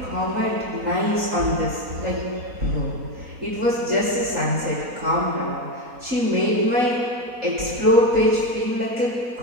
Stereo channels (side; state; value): left; late; 4.0 ms